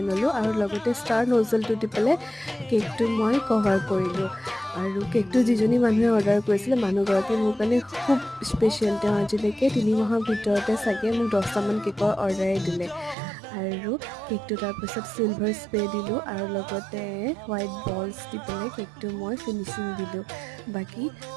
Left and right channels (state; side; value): drops out; left; at 13.2 s